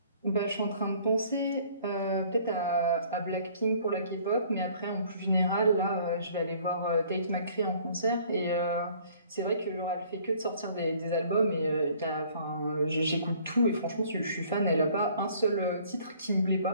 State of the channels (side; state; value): both; inverted; correlation -0.57